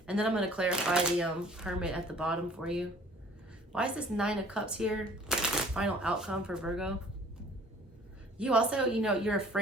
And then I'm going to clarify the Hermit at the bottom for you. Why is this 9 of Cups here? Final outcome for Virgo. You also, you know, you're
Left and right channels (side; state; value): both; normal; correlation 0.52